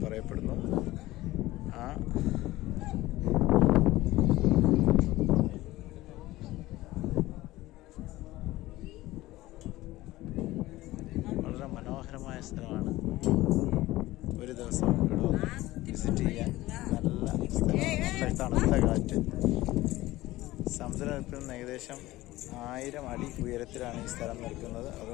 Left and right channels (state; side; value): quieter; right; 17.5 dB